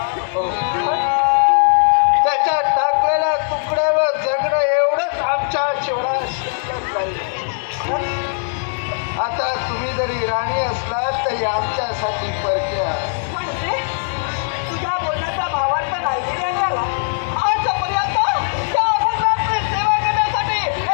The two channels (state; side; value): silent; right; digital silence